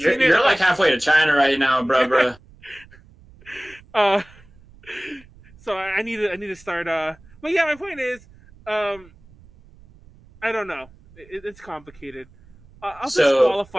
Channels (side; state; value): right; noise; rumble, 25 dB below the sound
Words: halfway to China right now, bro. So I need to start. But yeah, my point is, I don't know. It's complicated. I'll